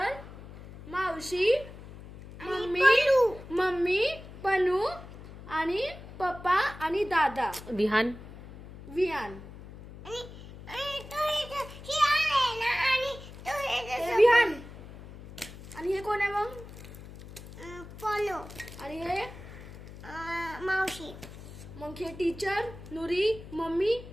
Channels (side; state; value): left; noise; hum, 15 dB below the sound